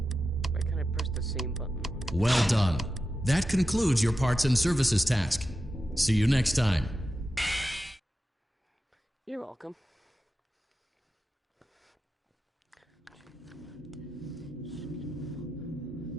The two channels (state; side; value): normal; both; correlation 0.91